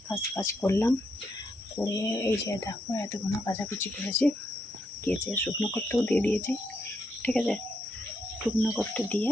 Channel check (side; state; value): both; normal; correlation 0.79